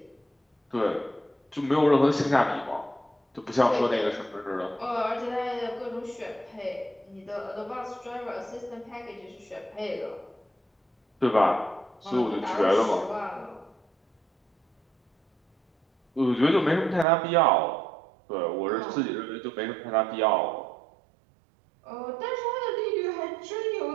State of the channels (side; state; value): left; drops out; at 17.1 s